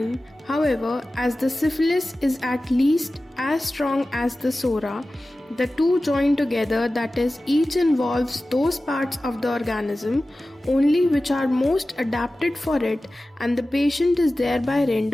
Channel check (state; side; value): normal; both; correlation 0.96